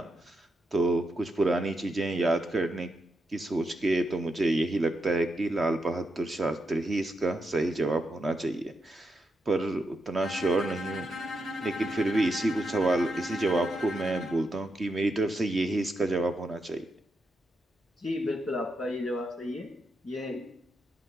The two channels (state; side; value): normal; both; correlation 0.84